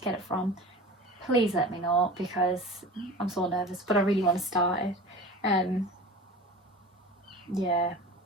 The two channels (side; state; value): both; normal; correlation 0.36